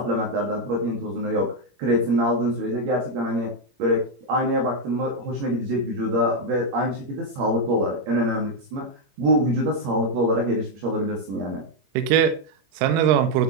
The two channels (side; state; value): left; late; 21 ms